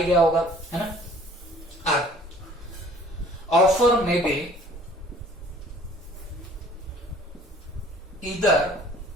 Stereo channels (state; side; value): normal; both; correlation 0.53